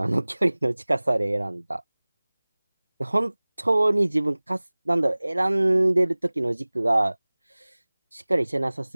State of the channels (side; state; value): both; inverted; correlation -1.00